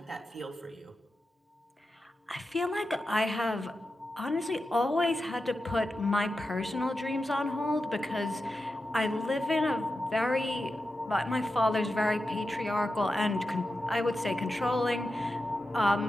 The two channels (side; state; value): both; normal; correlation 0.91